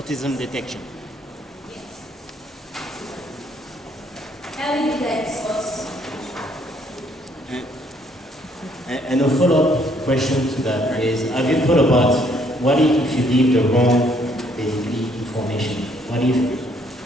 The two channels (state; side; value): normal; both; correlation 0.67